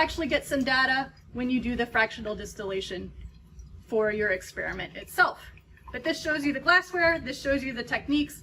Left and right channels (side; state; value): both; identical; correlation 1.00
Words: get some data when you do the fractional distillation for your experiment itself. But this shows you the glassware, this shows you the techniques,